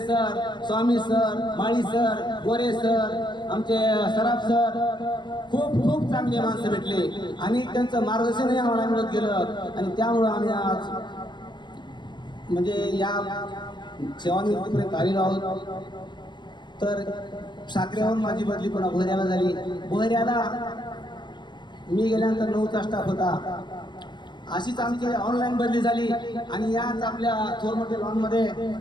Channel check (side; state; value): right; late; 0.22 ms